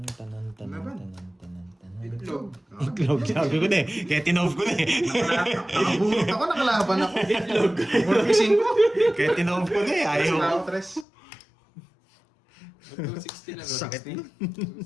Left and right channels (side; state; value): right; drops out; at 11.1 s